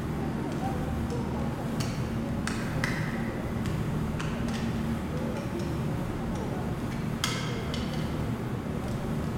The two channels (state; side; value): identical; both; correlation 1.00